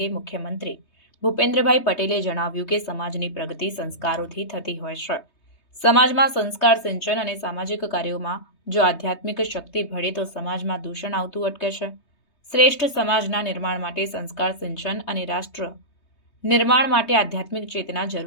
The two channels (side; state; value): right; late; 3.2 ms